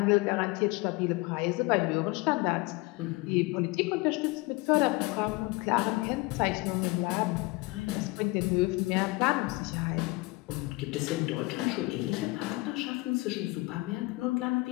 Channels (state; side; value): quieter; right; 23.9 dB